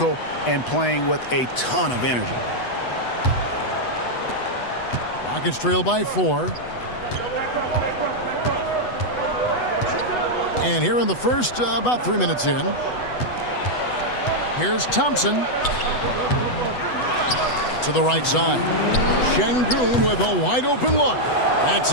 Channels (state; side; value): late; right; 8.1 ms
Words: and playing with a ton of energy. Rockets trail by 4. And here in the first, about 3 minutes in, here's Thompson to the right side. Şengün with a wide open look. That's